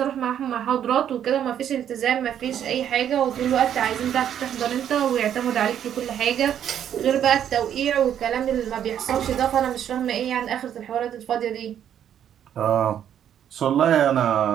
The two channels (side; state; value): left; quieter; 9.8 dB